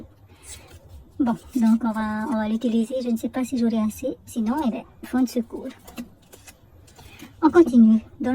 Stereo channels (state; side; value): identical; both; correlation 1.00